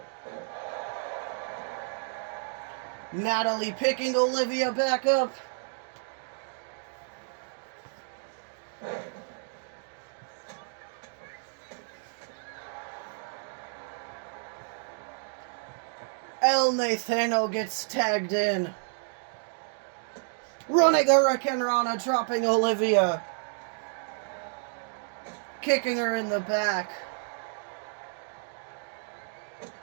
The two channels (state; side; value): silent; left; digital silence